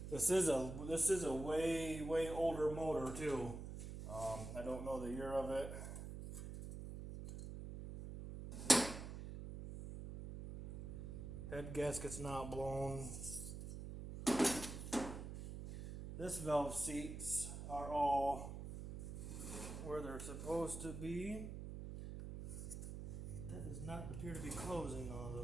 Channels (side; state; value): right; noise; hum, 8 dB below the sound